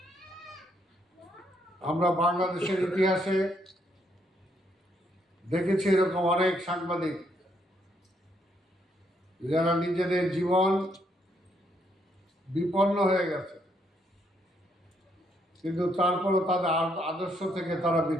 আমরা বাংলাদেশের ইতিহাসে দেখেছি এরকম অনেক সাংবাদিক যারা নিজেদের জীবন বিপন্ন হয়ে গেছে, কিন্তু তারপরও তাদের আদর্শ থেকে তারা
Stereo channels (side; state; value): both; normal; correlation 0.73